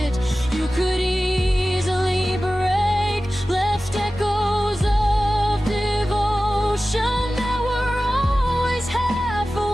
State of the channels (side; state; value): both; normal; correlation 0.96